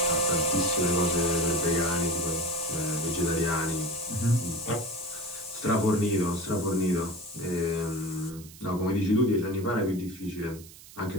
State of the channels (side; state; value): right; noise; hiss, 19 dB below the sound